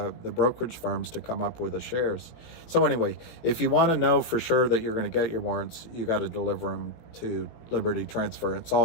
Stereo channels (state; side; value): late; right; 17 ms